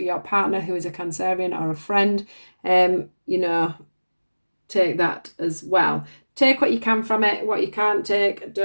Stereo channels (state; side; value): inverted; both; correlation -1.00